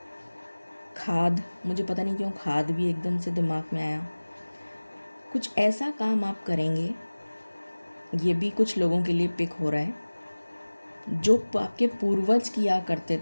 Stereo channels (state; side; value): inverted; both; correlation -1.00